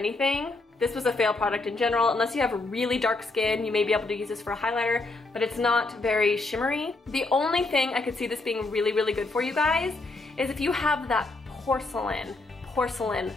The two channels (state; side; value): quieter; right; 3.2 dB